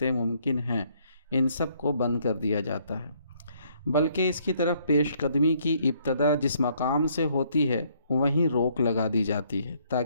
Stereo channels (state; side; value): inverted; both; correlation -0.67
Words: ممکن ہیں ان سب کو بند کر دیا جاتا ہے، بلکہ اس کی طرف پیش قدمی کی ابتدا جس مقام سے ہوتی ہے وہیں روک لگا دی جاتی ہے